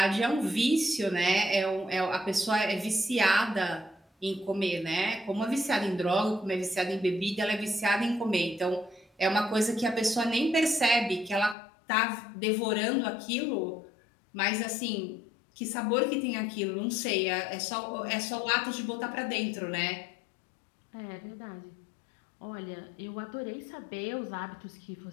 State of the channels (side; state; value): right; drops out; at 11.6 s